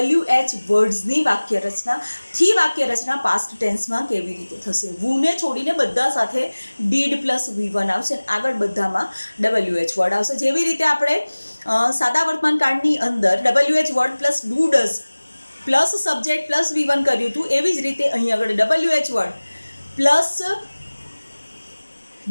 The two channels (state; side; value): inverted; both; correlation -1.00